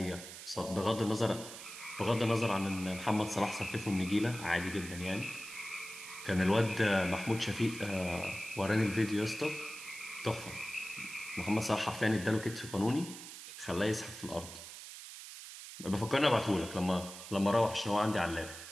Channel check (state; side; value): noise; right; hiss, 12 dB below the sound